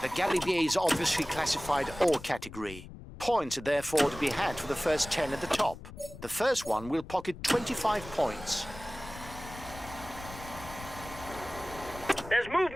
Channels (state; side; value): noise; left; rumble, 15 dB below the sound